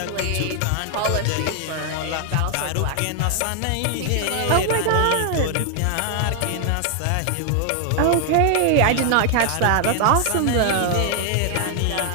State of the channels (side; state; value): both; different; correlation 0.00